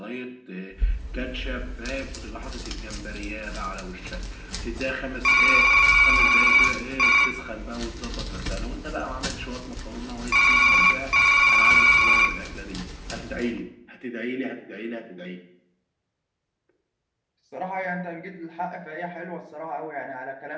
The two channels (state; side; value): identical; both; correlation 1.00